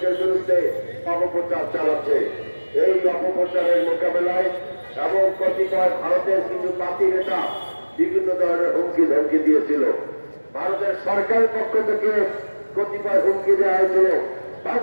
বিরুদ্ধে অপপ্রচার চালাচ্ছে। এই অপপ্রচারের মোকাবেলায় এবং কতিপয় ভারতের কিছু পাতি নেতা বিভিন্ন ধরনের হুমকি ধমকি দিয়েছিল। ভারতের সরকারের পক্ষ থেকে কতিপয় হুমকি দেওয়া হয়েছিল,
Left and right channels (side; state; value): both; inverted; correlation -1.00